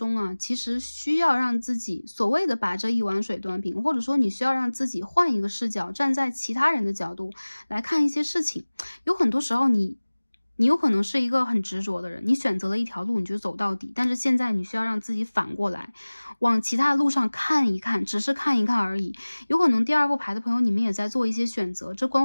啊，其实需要让自己所谓的把这一碗水端平，或者说你需要让自己换一个视角，站在其他人的角度来看一些事情。有很多时候你你有可能是一个很执着的人，你选择了一条路你就走到底，但是现在你需要让自己反过来，往其他路上看一看，只是看一看而已。有可能第二副牌的朋友，你们也在做一些选择，这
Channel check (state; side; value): inverted; both; correlation -1.00